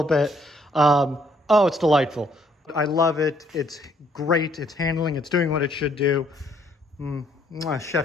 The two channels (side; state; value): both; normal; correlation 0.67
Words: bit. Oh, it's delightful. I love it. It's great. It's handling. It's doing what it should do.